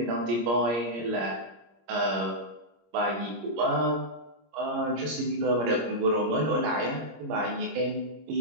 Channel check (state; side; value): late; left; 26 ms